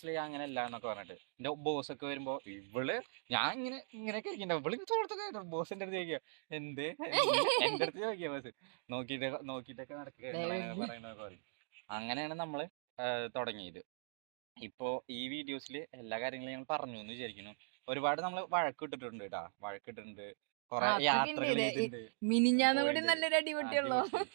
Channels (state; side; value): silent; left; digital silence